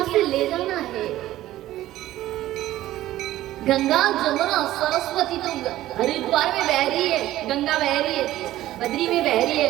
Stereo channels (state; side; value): quieter; left; 14.7 dB